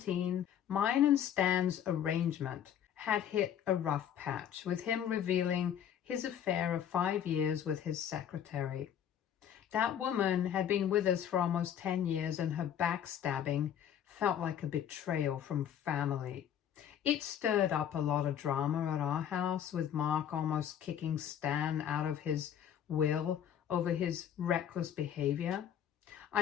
mine and Stan's arrangement had hit a rough patch, with him revealing his affair of 5 years with his secretary. That woman had been with us for almost 10 years, and her backstabbing felt like a betrayal from family. It stirred up a lot of drama at our house, with Mark almost kicking Stan out of his will over his reckless behavior.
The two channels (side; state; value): right; quieter; 9.5 dB